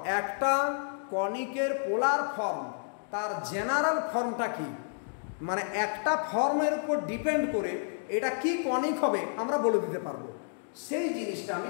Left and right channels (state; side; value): silent; right; digital silence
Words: একটা কনিকের পোলার ফর্ম তার জেনারেল ফর্মটা কি, মানে একটা ফর্মের উপর ডিপেন্ড করে এটা কি কনিক হবে আমরা বলে দিতে পারবো, সেই জিনিসটা আমি